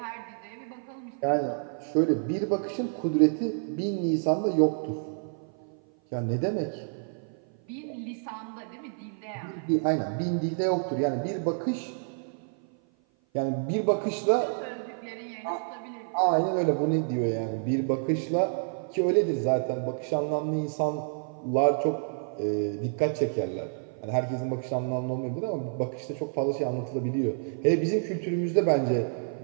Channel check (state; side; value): silent; left; 55 dB below the other